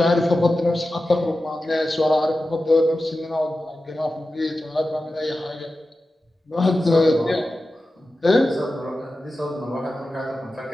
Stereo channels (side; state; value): both; normal; correlation 0.93